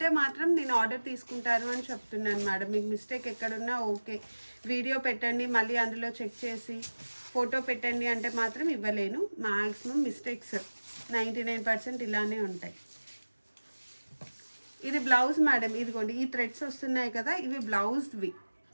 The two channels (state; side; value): inverted; both; correlation -1.00